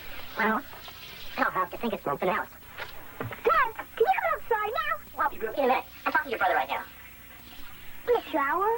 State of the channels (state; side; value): noise; left; rumble, 27 dB below the sound